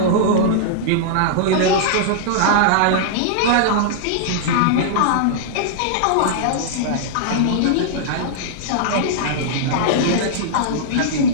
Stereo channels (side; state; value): both; different; correlation -0.02